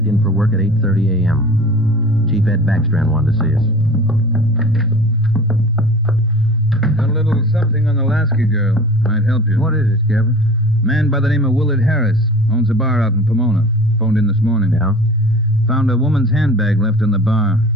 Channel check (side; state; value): both; normal; correlation 0.40